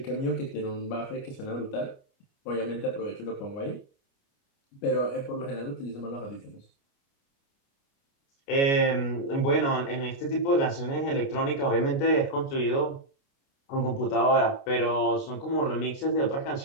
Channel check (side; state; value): right; late; 29 ms